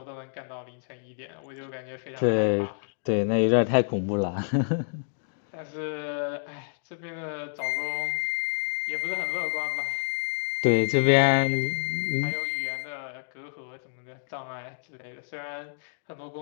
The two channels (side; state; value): right; silent; digital silence